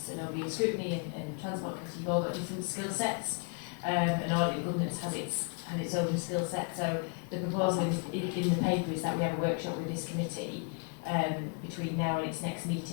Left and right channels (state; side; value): quieter; right; 35.6 dB